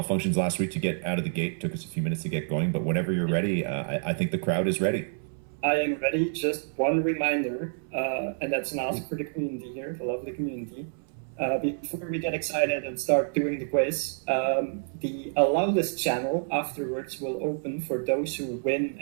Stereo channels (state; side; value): silent; left; 59 dB below the other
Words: last week to get out of the gate. It took us a few minutes to get going, but whenever you're ready, I think the crowd is ready. I am ready. Just one reminder, and that's an ask for the community here, the lovely community. Before we get excited and start doing the quiz, the allow list channel afterwards will open for those who win